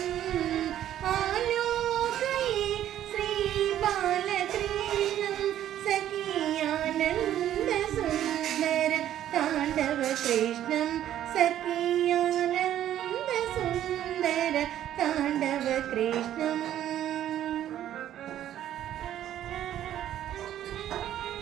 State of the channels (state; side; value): quieter; left; 11.6 dB